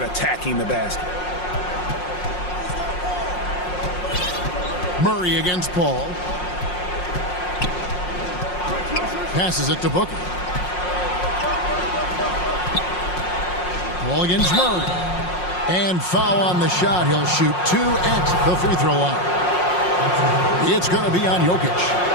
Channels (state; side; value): late; right; 5.6 ms